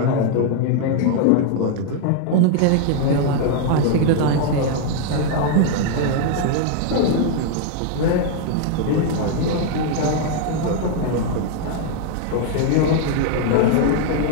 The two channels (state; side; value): different; both; correlation 0.00